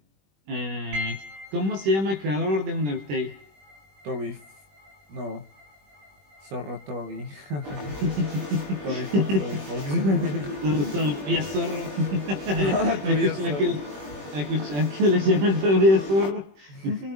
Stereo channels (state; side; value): late; left; 21 ms